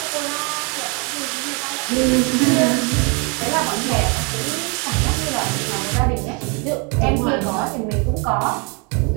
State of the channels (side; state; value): left; quieter; 33.6 dB